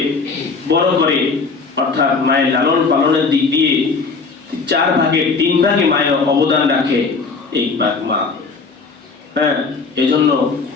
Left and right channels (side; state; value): right; quieter; 4.5 dB